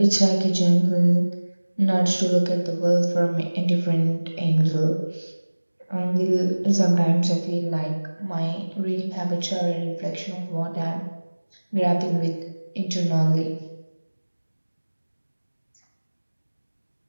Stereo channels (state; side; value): inverted; both; correlation -1.00